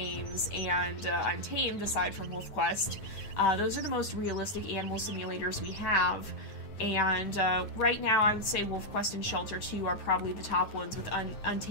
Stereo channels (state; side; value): late; right; 9.2 ms